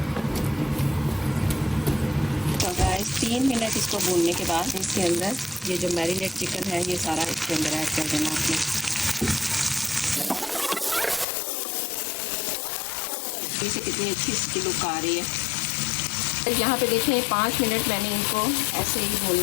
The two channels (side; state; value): right; drops out; at 11.2 s